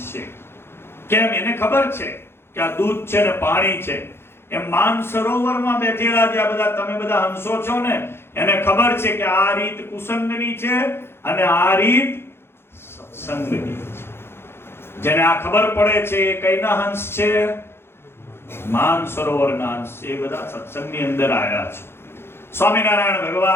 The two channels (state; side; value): late; right; 0.11 ms